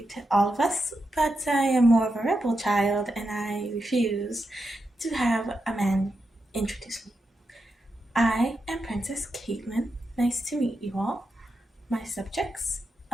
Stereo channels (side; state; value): both; normal; correlation 0.87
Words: all of us, but I am more of a rebel child and I refuse to have a man introduce me. I am Princess Caitlin. Nice to meet you all, my subjects